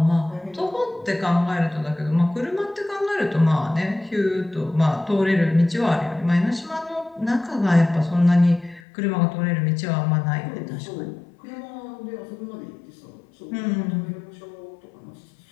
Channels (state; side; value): drops out; right; at 8.8 s